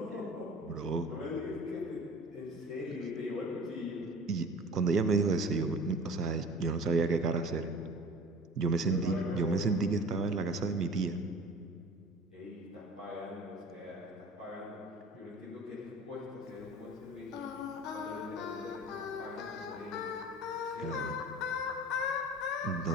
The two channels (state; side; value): normal; both; correlation 0.42